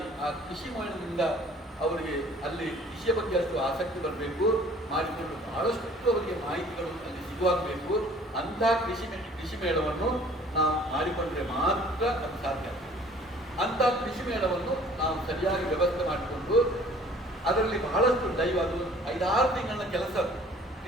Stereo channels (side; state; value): both; normal; correlation 0.53